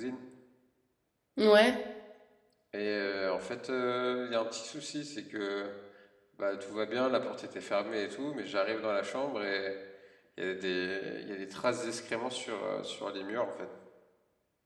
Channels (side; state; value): both; identical; correlation 1.00